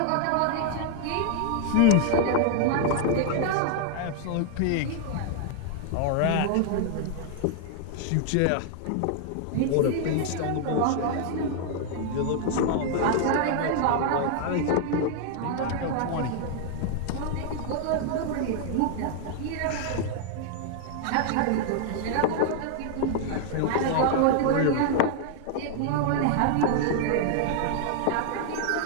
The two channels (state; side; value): different; both; correlation 0.00